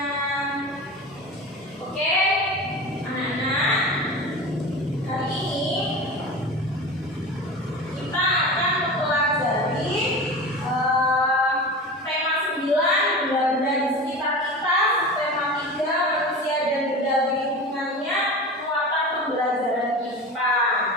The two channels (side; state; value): both; normal; correlation 0.31